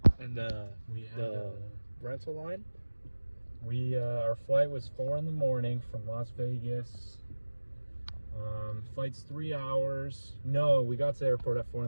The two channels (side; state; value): both; inverted; correlation -1.00